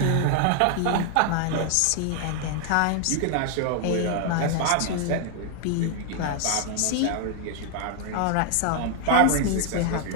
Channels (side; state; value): both; different; correlation 0.00